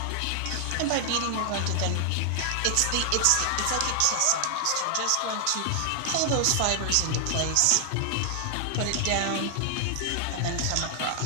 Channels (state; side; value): different; both; correlation 0.00